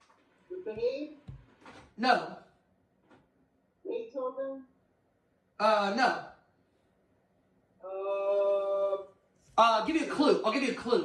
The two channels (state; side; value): identical; both; correlation 1.00